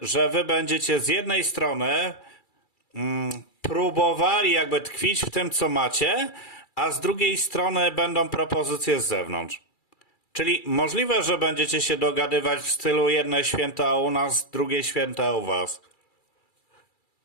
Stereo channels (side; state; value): right; late; 2.3 ms